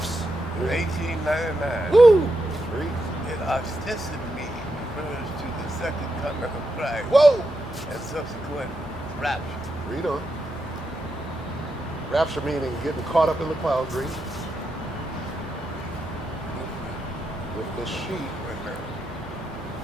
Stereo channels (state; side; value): normal; both; correlation 0.85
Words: in 1899. Woo! Read. It ostensibly refers to the second coming of Christ Whoa! and subsequent rapture. Read on. Rapture meaning getting caught up in the clouds. Read. With the sheep.